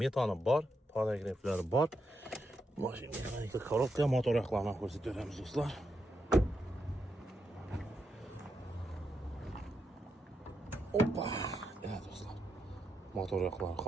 bor, paragraflari bor. Mashina mexanika korobka, motor yoqlarini ko'rsatib beramiz do'stlar. Hoppa. Evet do'stlar. Motor yoqlari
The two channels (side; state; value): both; normal; correlation 0.83